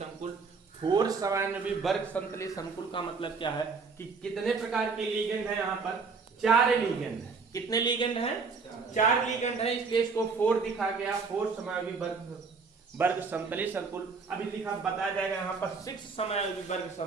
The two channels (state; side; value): quieter; left; 4.8 dB